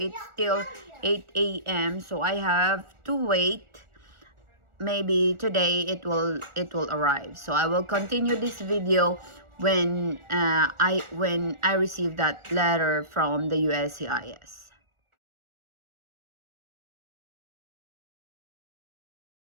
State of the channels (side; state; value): left; late; 1.4 ms